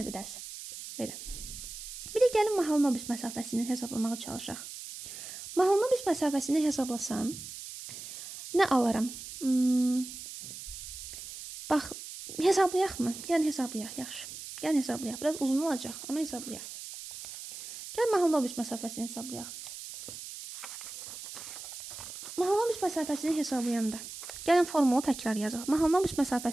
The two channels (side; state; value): right; noise; hiss, 11 dB below the sound